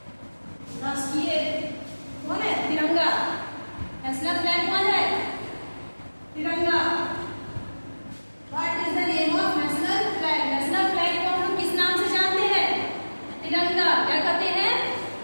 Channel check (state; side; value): inverted; both; correlation -1.00